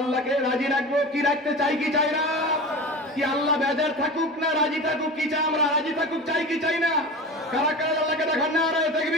রাজি রাখবো কি রাখতে চাই কি চাই না? কি আল্লাহ বেজার থাকুক না রাজি থাকুক কি চাই? আমরা রাজি থাকুক চাই কি চাই না? কারা কারা আল্লাহকে দেখান নারায়ে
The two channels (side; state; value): both; normal; correlation 0.31